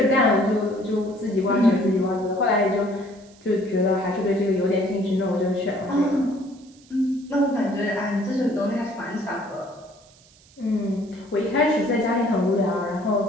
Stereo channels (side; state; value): right; noise; hiss, 28 dB below the sound